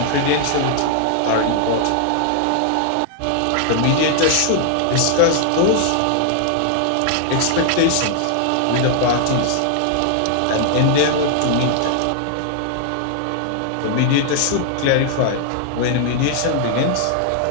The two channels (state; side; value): different; both; correlation -0.01